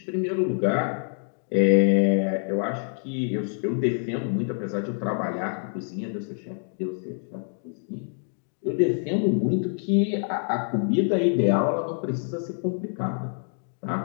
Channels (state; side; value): silent; right; 60 dB below the other